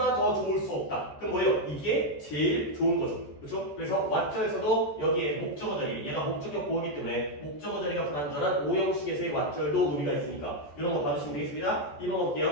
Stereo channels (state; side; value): late; right; 14 ms